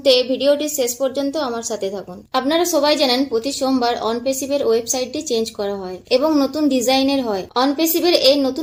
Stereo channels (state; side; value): identical; both; correlation 1.00